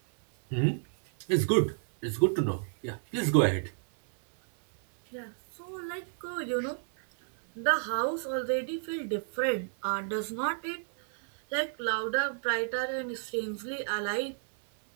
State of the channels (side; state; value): left; silent; 57 dB below the other